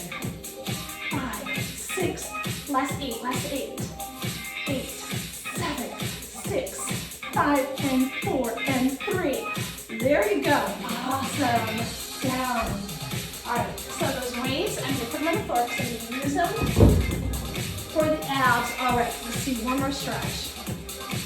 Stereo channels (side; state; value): both; identical; correlation 1.00